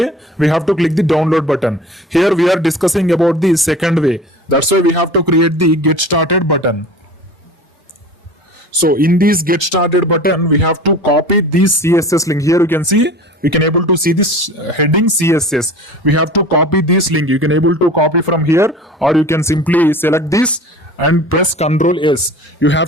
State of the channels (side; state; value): both; normal; correlation 0.39